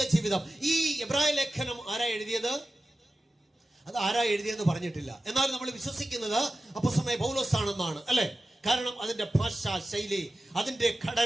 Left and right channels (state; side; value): normal; both; correlation 0.94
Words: ജീവിതം. ഈ എബ്രായ ലേഖനം ആരാ എഴുതിയത്? അത് ആരാ എഴുതിയെന്ന് പറഞ്ഞിട്ടില്ല. എന്നാൽ നമ്മൾ വിശ്വസിക്കുന്നത് അപ്പോസ്തലനായ പൗലോസ് ആണെന്നാണ്, അല്ലെ? കാരണം അതിന്റെ ഭാഷാ ശൈലി, അതിന്റെ